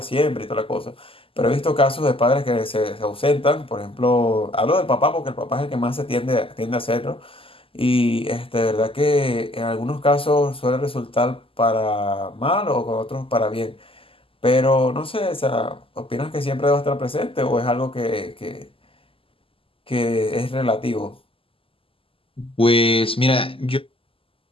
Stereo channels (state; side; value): late; right; 0.26 ms